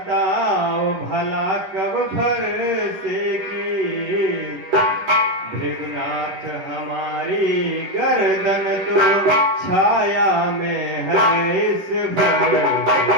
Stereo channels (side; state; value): left; late; 11 ms